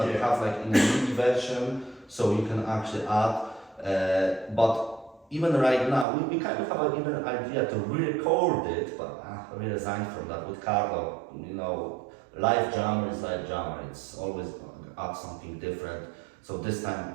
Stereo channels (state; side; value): drops out; left; at 6.1 s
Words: you have like in the MIDI version, so you can actually add. But even right now, we kind of have even an idea to re-record it, but we resigned from that with Carlo. You know, live drummer is live drummer. It's always add something different. So this time,